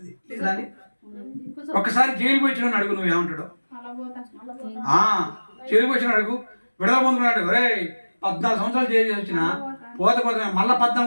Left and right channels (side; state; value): both; inverted; correlation -1.00